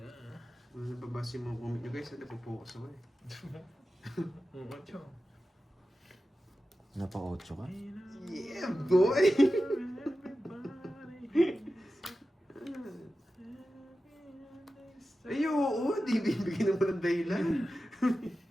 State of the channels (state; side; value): normal; both; correlation 0.93